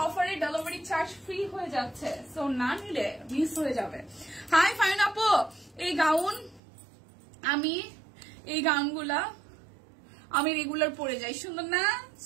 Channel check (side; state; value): left; drops out; at 6.6 s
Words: অফারে ডেলিভারি চার্জ ফ্রি হয়ে যাচ্ছে। সো না নিলে মিস হয়ে যাবে। হাই ফাইন আপু, এই গাউন এই গাউনগুলা আমি রেগুলার পরে যাই। সুন্দর না?